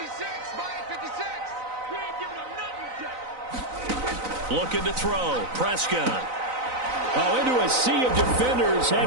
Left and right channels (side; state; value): left; late; 3.9 ms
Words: Looking to throw. Prescott. Oh, into a sea of defenders